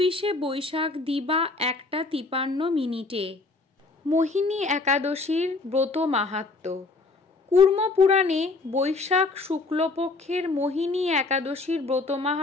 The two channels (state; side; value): quieter; right; 3.6 dB